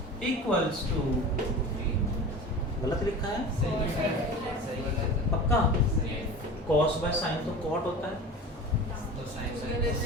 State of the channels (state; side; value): normal; both; correlation 0.34